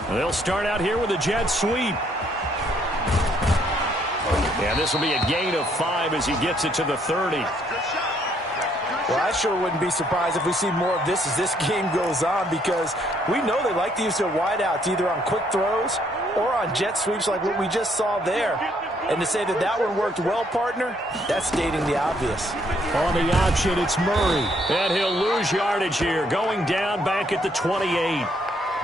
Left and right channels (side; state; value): both; normal; correlation 0.69